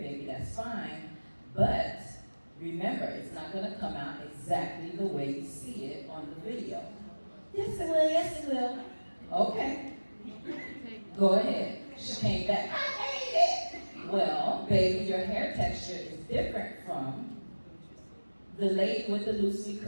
that's fine. But remember, it's not going to come out exactly the way you see it on the video. Yes, it will. Yes, it will. Okay. Go ahead. She came back. I hate it. Well, baby, your hair texture is different from the lady with the loosely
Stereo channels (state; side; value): inverted; both; correlation -1.00